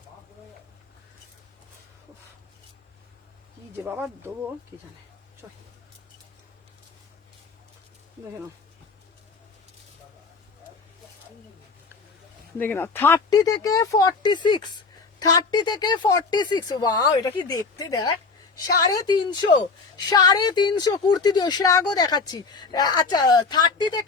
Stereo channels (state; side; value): quieter; right; 4.4 dB